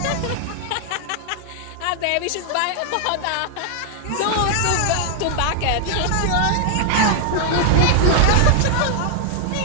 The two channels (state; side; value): different; both; correlation 0.00